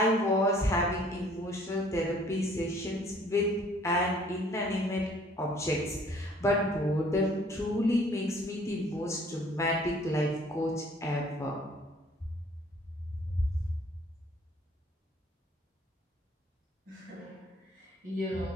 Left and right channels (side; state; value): both; normal; correlation 0.57